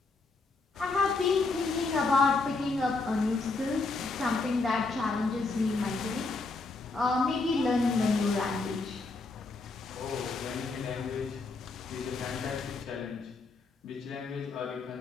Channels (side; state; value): right; quieter; 3.7 dB